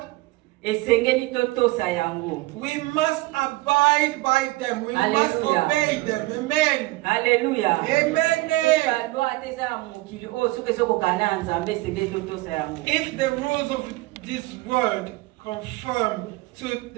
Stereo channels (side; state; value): left; quieter; 20.6 dB